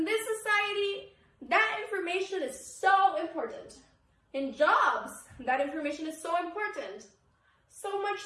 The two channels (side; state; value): both; identical; correlation 1.00